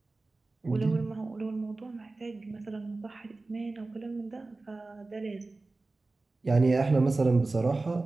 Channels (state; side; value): quieter; left; 3.4 dB